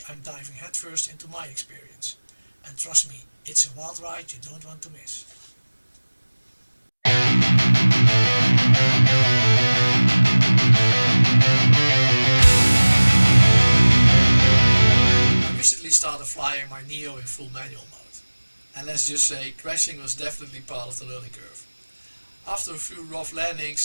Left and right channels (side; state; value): both; inverted; correlation -1.00